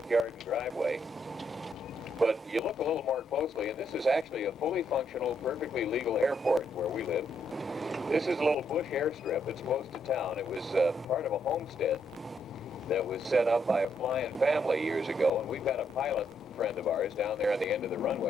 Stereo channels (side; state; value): both; normal; correlation 0.75